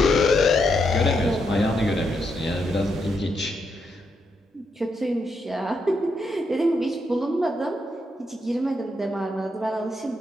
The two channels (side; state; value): both; normal; correlation 0.80